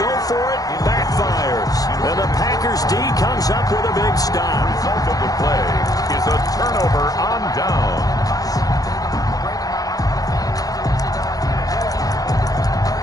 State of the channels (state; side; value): late; right; 0.18 ms